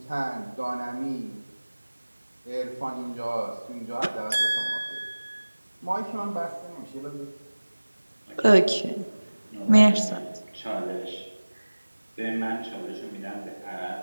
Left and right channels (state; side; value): inverted; both; correlation -1.00